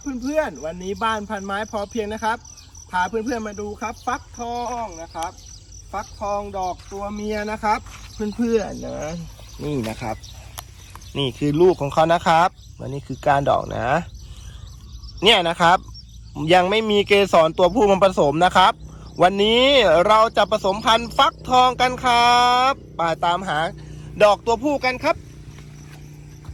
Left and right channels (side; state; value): both; identical; correlation 1.00